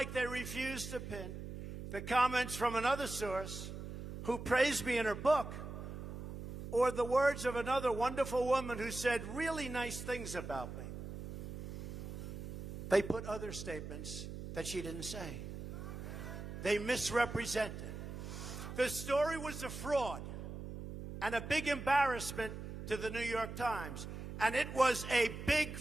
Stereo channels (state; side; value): noise; right; hum, 8 dB below the sound